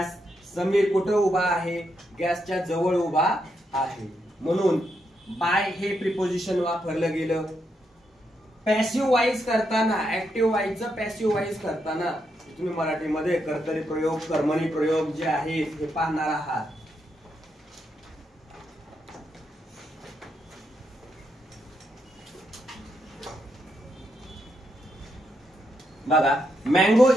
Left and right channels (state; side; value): normal; both; correlation 0.81